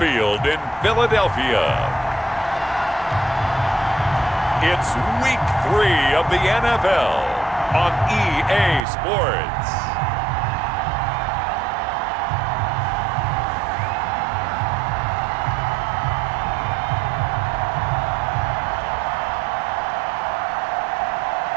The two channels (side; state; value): left; drops out; at 8.8 s